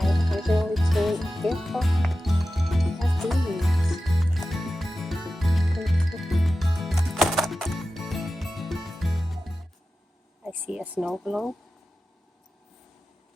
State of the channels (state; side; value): normal; both; correlation 0.94